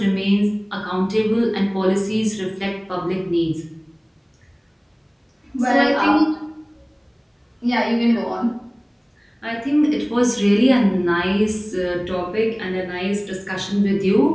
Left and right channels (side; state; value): both; identical; correlation 1.00